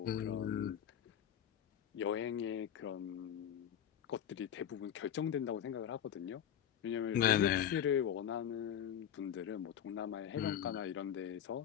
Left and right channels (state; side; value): quieter; right; 9.6 dB